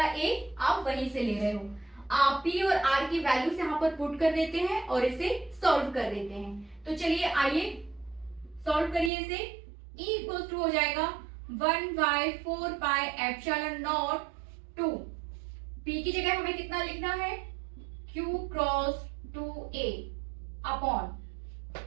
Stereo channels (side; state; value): left; drops out; at 9.1 s